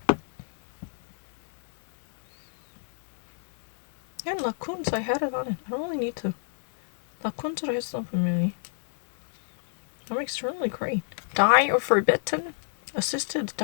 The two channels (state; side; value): silent; right; digital silence